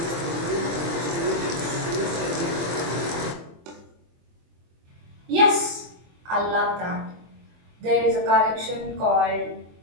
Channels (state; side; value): late; left; 24 ms